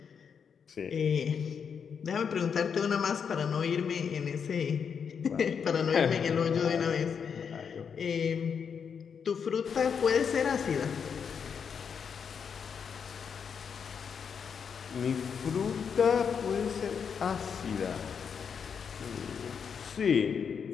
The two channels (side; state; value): right; quieter; 6.8 dB